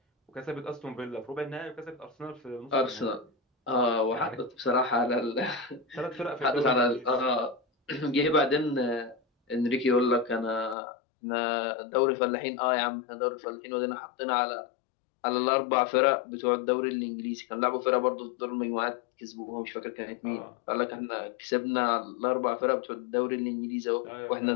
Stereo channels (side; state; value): right; drops out; at 10.8 s